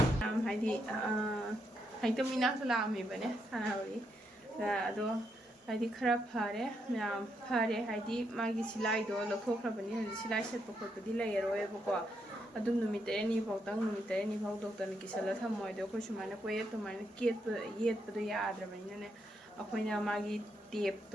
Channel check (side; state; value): both; normal; correlation 0.79